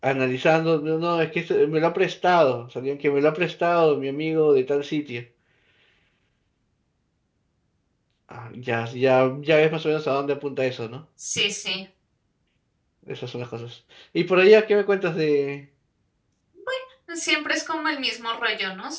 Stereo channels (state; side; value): identical; both; correlation 1.00